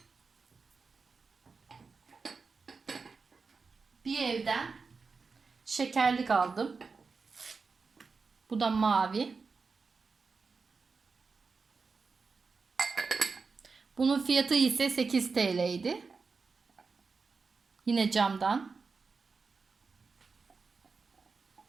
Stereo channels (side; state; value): left; quieter; 4.7 dB